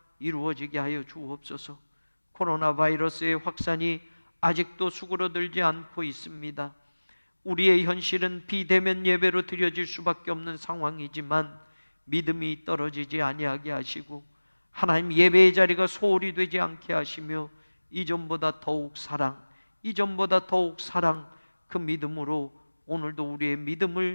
이루어지게 하여 주옵소서. 코로나 바이러스의 확산이 아직도 수그러들지 않고 있습니다. 우리의 현실은 비대면 예배로 드려질 수밖에 없는 상황이지만 믿음이 떨어지지 아니하게 하시고 하나님 예배의 자리가 소홀히 되지 않게 하시며 이전보다 더욱 사랑, 이전보다 더욱 사랑, 그 믿음으로 오늘도 우리의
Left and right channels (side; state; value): both; inverted; correlation -1.00